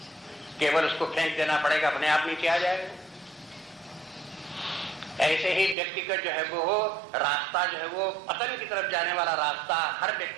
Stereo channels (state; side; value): drops out; left; at 5.8 s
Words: केवल उसको फेंक देना पड़ेगा, अपने आप नीचे आ जाएगा। ऐसे ही व्यक्ति का जो है वो रास्ता जो है वो पतन की तरफ जाने वाला रास्ता हर